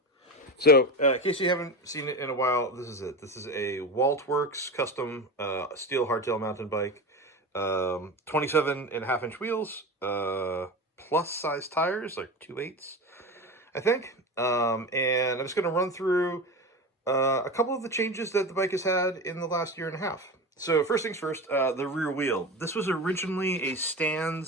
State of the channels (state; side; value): normal; both; correlation 0.27